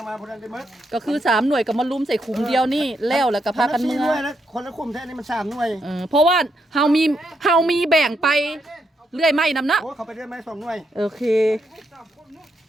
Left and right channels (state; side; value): normal; both; correlation 0.79